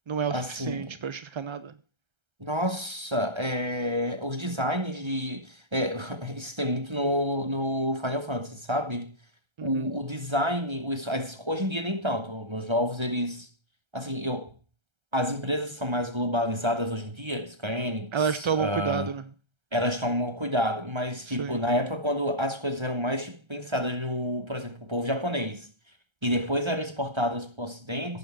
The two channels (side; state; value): left; late; 1.3 ms